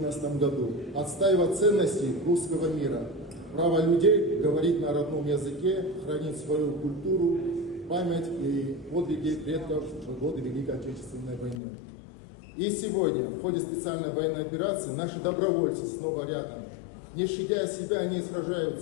году, отстаивая ценности русского мира, право людей говорить на родном языке, хранить свою культуру, память и подвиги предков в годы Великой Отечественной войны. И сегодня, в ходе специальной военной операции, наши добровольцы снова рядом. Не щадя себя, они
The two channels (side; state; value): right; drops out; at 11.6 s